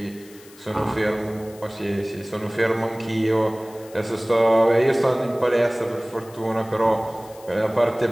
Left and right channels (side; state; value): left; noise; hiss, 23 dB below the sound